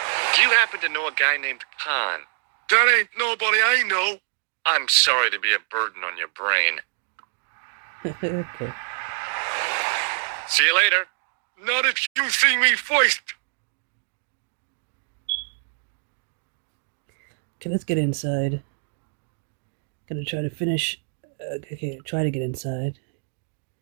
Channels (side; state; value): left; silent; 60 dB below the other